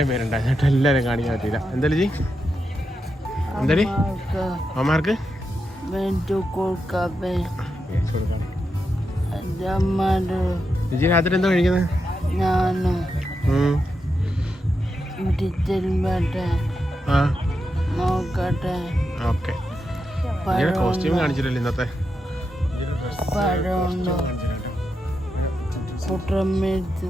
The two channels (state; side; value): normal; both; correlation 0.86